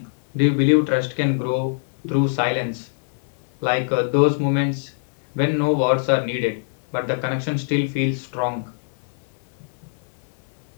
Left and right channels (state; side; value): silent; right; digital silence